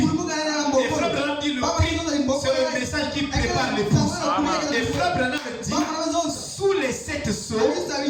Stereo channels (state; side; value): identical; both; correlation 1.00